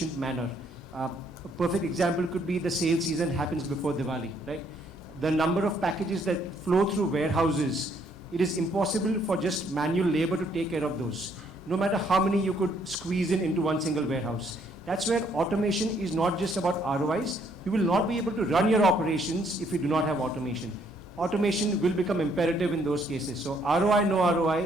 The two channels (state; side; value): normal; both; correlation 0.68